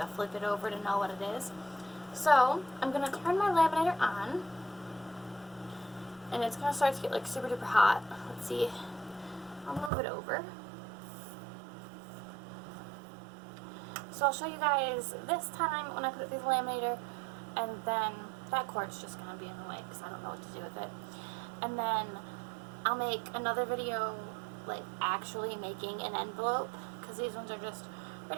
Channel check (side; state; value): left; drops out; at 9.9 s